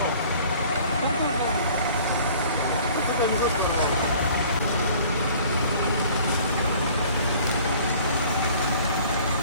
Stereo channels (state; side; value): inverted; both; correlation -0.51